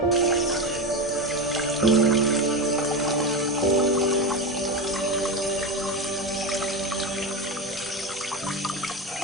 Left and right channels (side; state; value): both; normal; correlation 0.20